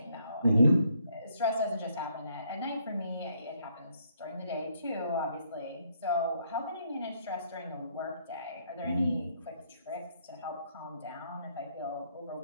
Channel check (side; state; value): both; inverted; correlation -0.71